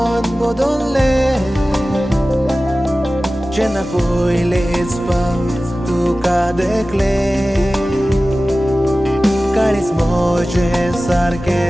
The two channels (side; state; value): both; normal; correlation 0.96